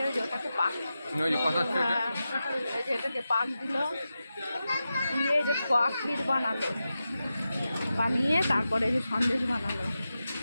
যে ওটাকে পাক এই যে এটাকে পাক দিল দিয়ে এই যে ক্ষীর বানালো বানিয়ে তারপরে এই যে সন্দেশ বানালো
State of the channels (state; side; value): inverted; both; correlation -0.92